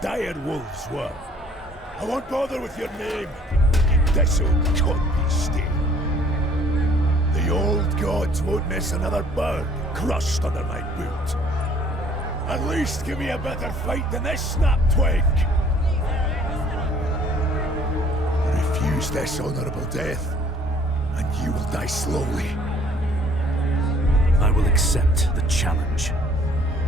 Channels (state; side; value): normal; both; correlation 0.57